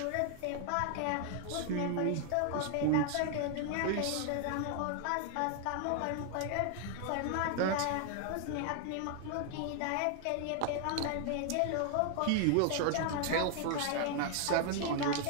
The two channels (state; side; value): different; both; correlation 0.00